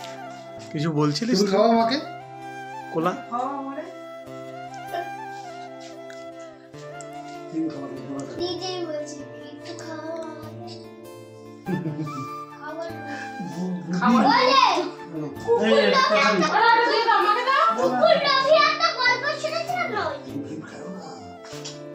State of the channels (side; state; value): both; identical; correlation 1.00